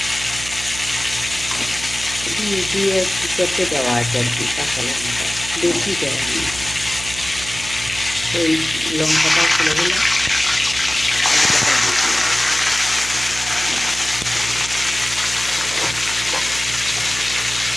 দিয়ে কুকারতে দেওয়া আছে আর কি। কাঁচা লঙ্কা বেশি দেওয়া নেই, ওই লঙ্কাটাও ফেলে দিলাম, আলুটা দিয়ে দিলাম।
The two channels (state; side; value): noise; right; hum, 12 dB below the sound